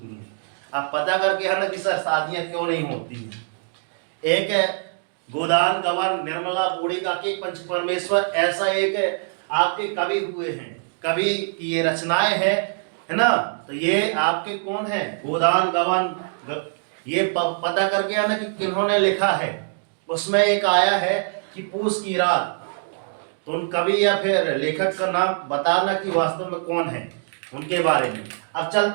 है। आप पता करके है ना कि सर शादियां क्यों नहीं होती हैं। एक गोदान गवर्न निर्मला बूढ़ी का के पंच परमेश्वर, ऐसा एक आपके कवि हुए हैं, कवि की ये रचनाएं है ना। तो ये आपके कौन है? गोदान गवर्न। ये पता करके है ना कि किन्होंने लिखा है। उसमें एक आया है कि पूष की रात। तो उन कवि या फिर लेखक का नाम बताना कि वास्तव में कौन है। उनके बारे में। अब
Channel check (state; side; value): silent; left; digital silence